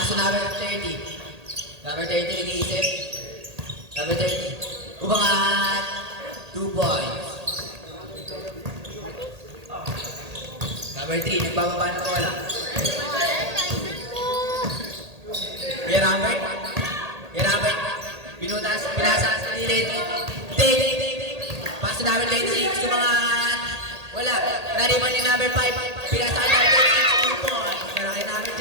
Paso number 30. Number 30, nag-iisip. Number 30. Umangat. 2 points. Number 3, nagbababa ng bola. Kuya Robert. Kuya Robert. Pinasa sa lilit. Paso number 26, umangat. Wala. Nariban ni number 5. Pinasa number 26, 2 points. Para kay number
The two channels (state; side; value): late; left; 1.8 ms